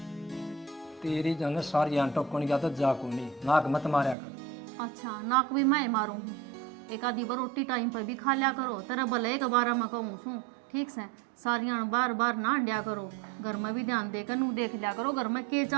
तेरी जो है सारी आंटो कौन गया तो जा को नहीं, नाक मत मारा कर। अच्छा नाक भी मैं मारू हूँ, एक आधी बार रोटी टाइम पर भी खा लिया करो। तेरा भले एक बार मैं कहूँ सू, ठीक से सारियां बार बार ना अंडिया करो। घर में भी ध्यान देकर नू देख लिया करो घर में के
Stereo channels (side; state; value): left; drops out; at 4.2 s